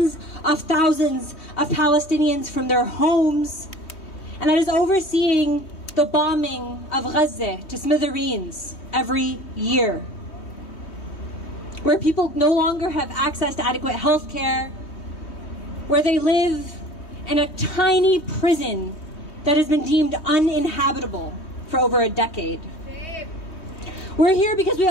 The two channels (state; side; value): late; right; 3.2 ms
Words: of thousands of Palestinians from their homes, and that is overseeing the bombing of Gaza to smithereens every year, where people no longer have access to adequate health care, where they live in a tiny prison that has been deemed uninhabitable for over a decade. We're here because we